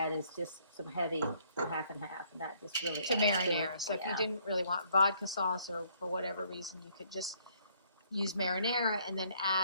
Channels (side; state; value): both; inverted; correlation -0.65